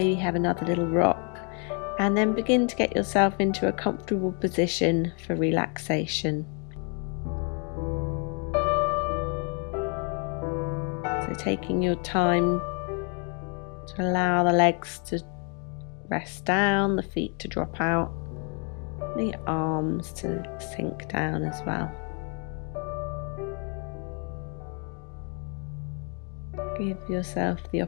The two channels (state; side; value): quieter; right; 37.9 dB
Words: have another little rock, and then begin to get yourself into a comfortable position for relaxation. So taking your time to allow the legs to rest down, the feet to drop out, the arms to sink down as well. Give yourself the